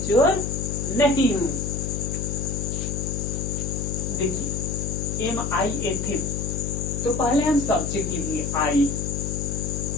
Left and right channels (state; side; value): noise; left; hum, 2 dB below the sound